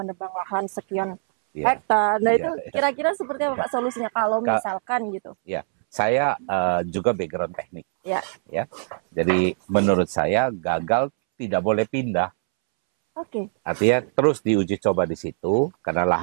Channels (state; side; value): silent; left; 63 dB below the other